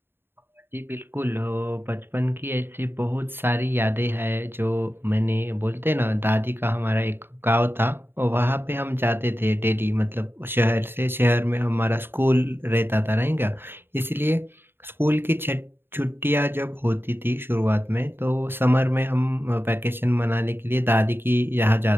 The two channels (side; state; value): left; late; 0.11 ms